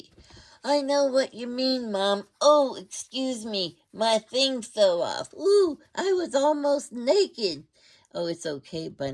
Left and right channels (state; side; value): identical; both; correlation 1.00